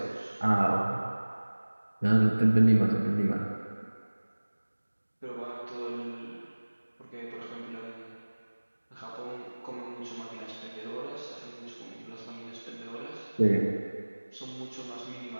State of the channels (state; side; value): inverted; both; correlation -1.00